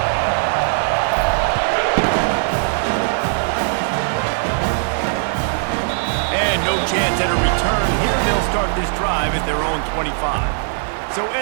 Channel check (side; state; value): left; silent; 56 dB below the other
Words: And no chance at a return here. They'll start this drive at their own 25. So